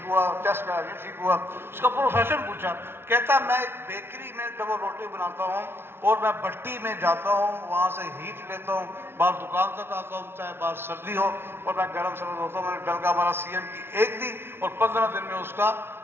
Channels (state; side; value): late; left; 0.11 ms